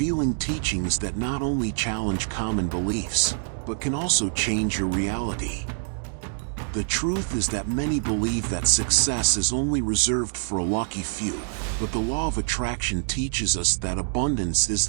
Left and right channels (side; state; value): left; silent; digital silence